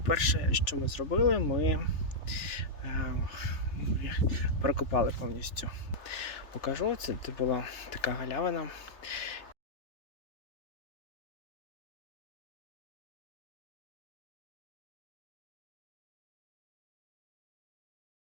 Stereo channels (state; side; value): late; right; 3.4 ms